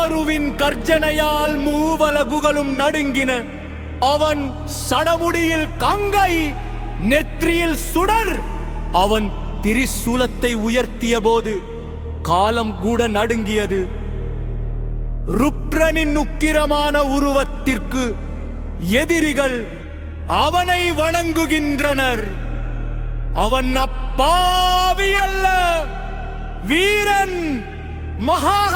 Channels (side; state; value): both; identical; correlation 1.00